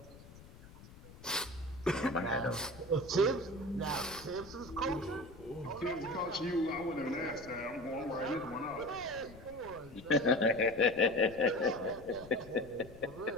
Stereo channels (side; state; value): left; noise; rumble, 19 dB below the sound